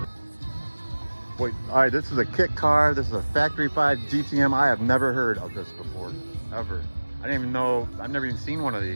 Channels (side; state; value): both; inverted; correlation -1.00